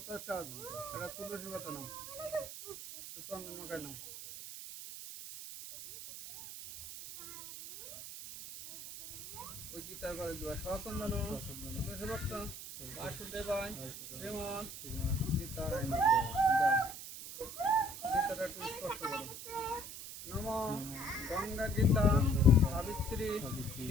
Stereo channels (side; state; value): right; noise; hiss, 10 dB below the sound